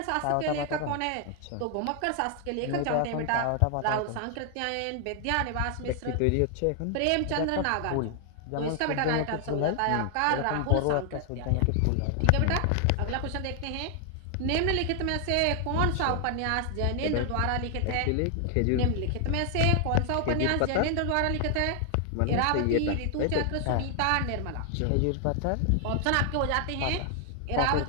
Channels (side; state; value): both; different; correlation 0.00